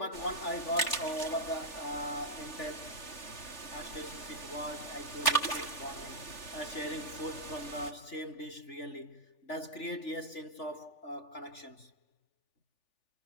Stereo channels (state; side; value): late; right; 3.4 ms